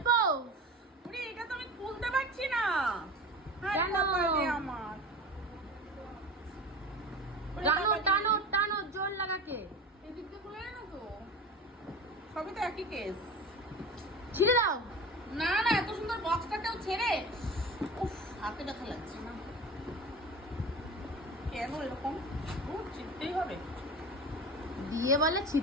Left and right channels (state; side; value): normal; both; correlation 0.32